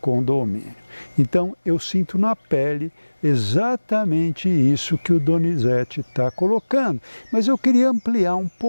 condomínio. Então eu sinto na pele exatamente isso que o Donizete está colocando. Mas eu queria ampliar um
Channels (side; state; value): both; inverted; correlation -1.00